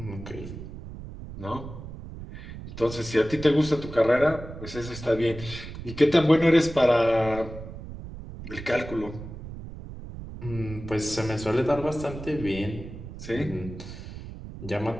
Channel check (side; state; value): right; noise; rumble, 11 dB below the sound